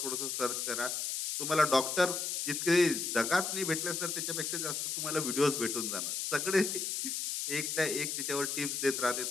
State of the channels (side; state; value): left; noise; hiss, 2 dB below the sound